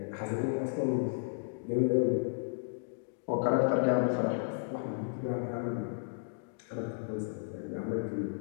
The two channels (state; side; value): silent; right; digital silence